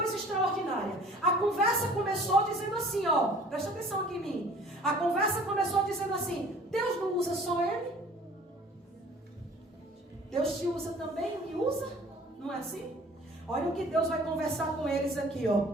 extraordinária. A conversa começou dizendo assim, presta atenção aqui em mim. A conversa começou dizendo assim, Deus não usa só ele? Deus te usa também e me usa? Não é assim? Olha o que Deus vai conversar com eles aqui,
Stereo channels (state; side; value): normal; both; correlation 0.50